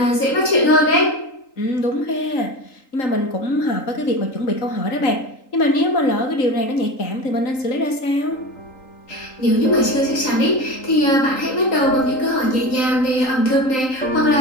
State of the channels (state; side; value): late; right; 3.8 ms